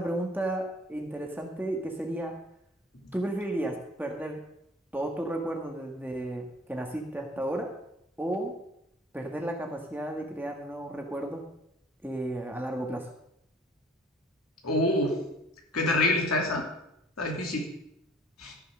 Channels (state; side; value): normal; both; correlation 0.51